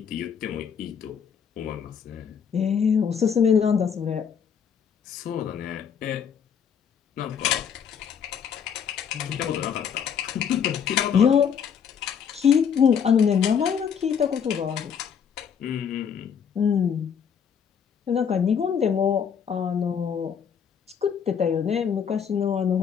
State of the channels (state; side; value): quieter; right; 7.4 dB